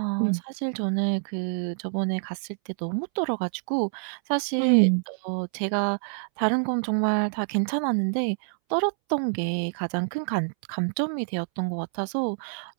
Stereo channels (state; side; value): silent; left; 60 dB below the other